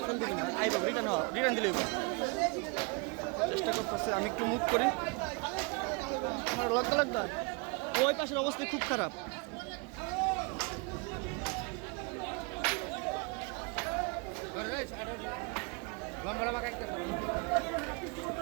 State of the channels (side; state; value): left; quieter; 31.6 dB